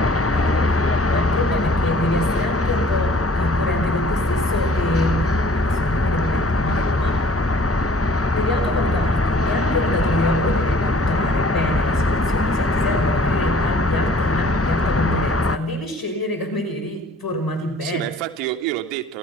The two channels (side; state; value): both; normal; correlation 0.53